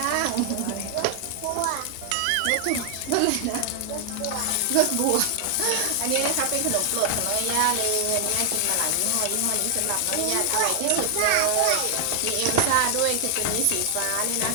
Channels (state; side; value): different; both; correlation 0.00